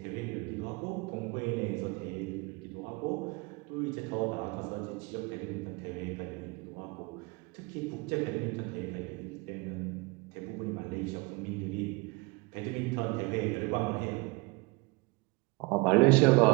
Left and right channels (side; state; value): left; quieter; 26.2 dB